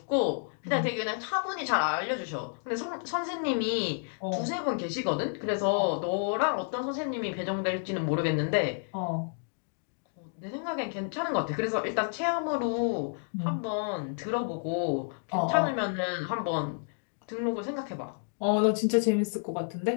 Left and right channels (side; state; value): right; silent; digital silence